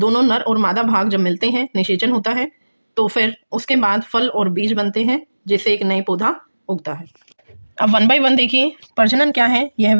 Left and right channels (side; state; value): both; inverted; correlation -1.00